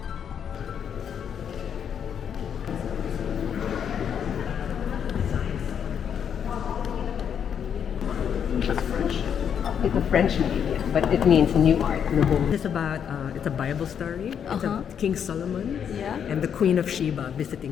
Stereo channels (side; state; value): right; quieter; 8.1 dB